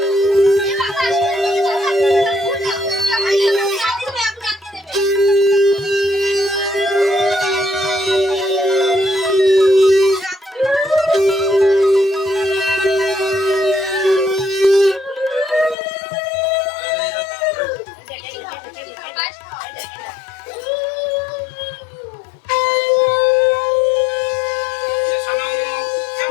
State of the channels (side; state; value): right; drops out; at 15.8 s